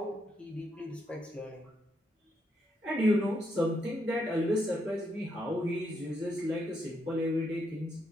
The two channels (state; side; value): normal; both; correlation 0.78